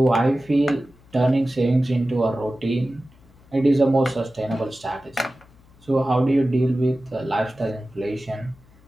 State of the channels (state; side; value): noise; left; hum, 28 dB below the sound